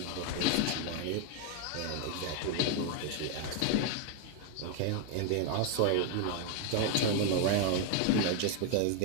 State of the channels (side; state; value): both; different; correlation 0.00